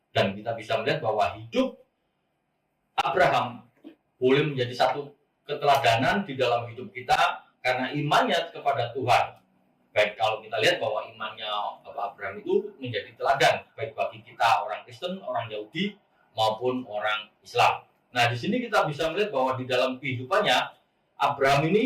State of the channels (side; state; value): both; identical; correlation 1.00